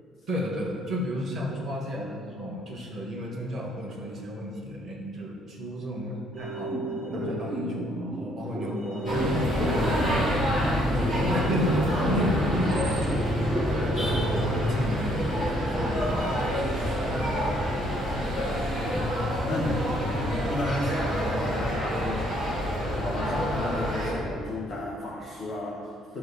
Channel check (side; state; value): both; normal; correlation 0.67